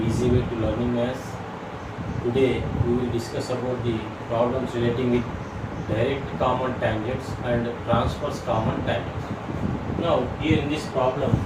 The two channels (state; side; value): identical; both; correlation 1.00